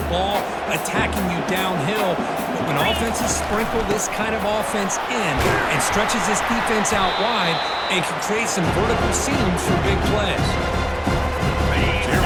ball attacking you downhill. But when offenses sprinkle this kind of offense in and stretches this defense out wide, and can create some vertical seams for big plays. Here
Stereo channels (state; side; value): identical; both; correlation 1.00